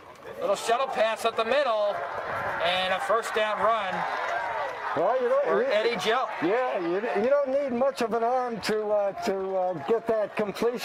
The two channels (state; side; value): identical; both; correlation 1.00